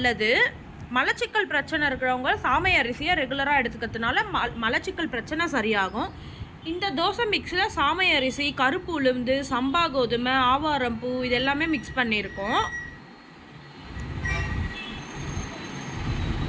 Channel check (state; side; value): identical; both; correlation 1.00